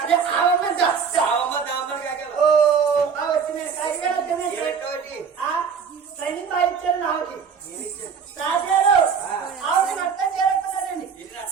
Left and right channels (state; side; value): quieter; left; 6.3 dB